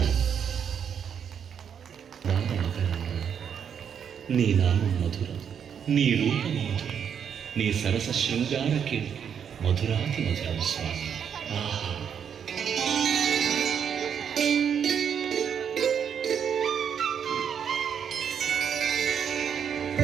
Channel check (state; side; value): quieter; left; 7.9 dB